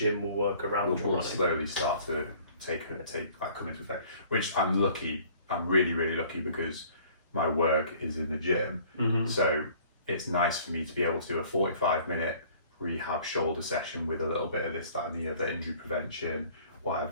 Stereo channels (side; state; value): both; inverted; correlation -0.54